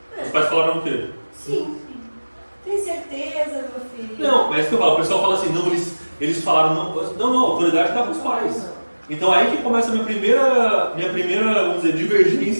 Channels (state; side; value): inverted; both; correlation -1.00